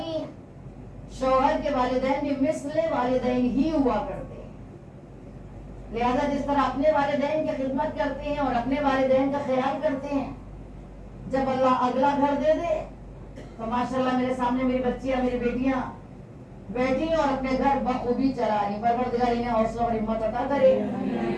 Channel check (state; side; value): identical; both; correlation 1.00